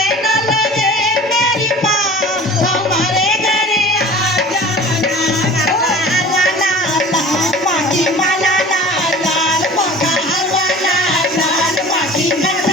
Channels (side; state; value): both; normal; correlation 0.42